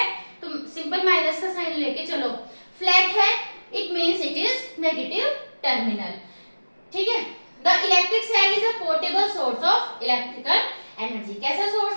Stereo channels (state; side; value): inverted; both; correlation -1.00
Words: तो सिंपल माइनस का साइन लेके चलो, फ्लैट है it means it is negative terminal. ठीक है, the electric cell is a portable source of electrical energy. कैसा